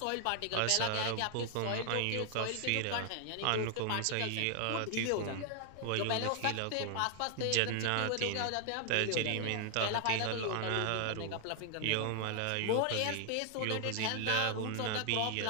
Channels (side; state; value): both; different; correlation 0.00